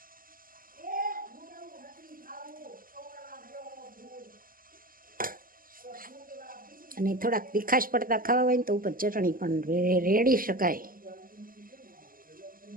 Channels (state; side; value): late; left; 0.41 ms